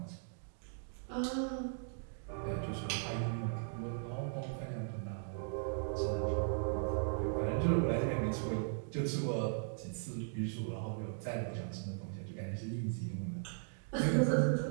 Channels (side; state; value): left; silent; digital silence